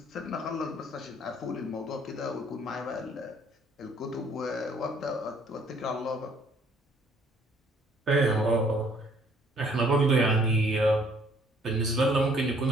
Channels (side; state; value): both; normal; correlation 0.61